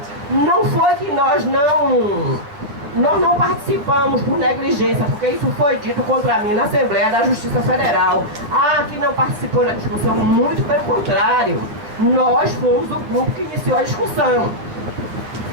não foi que nós não participamos por negligência, porque isso foi dito contra mim na Assembleia da Justiça Federal. Ah, que não participou da discussão, muito pelo contrário. Nós fomos o grupo que iniciou a discussão.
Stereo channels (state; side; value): late; left; 10 ms